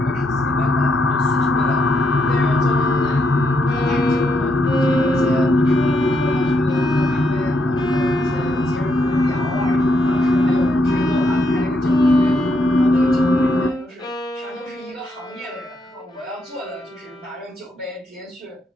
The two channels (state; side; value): normal; both; correlation 0.78